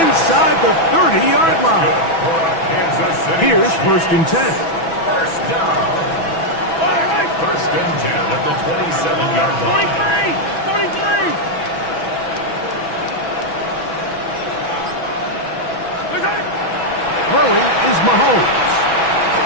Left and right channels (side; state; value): right; late; 6.1 ms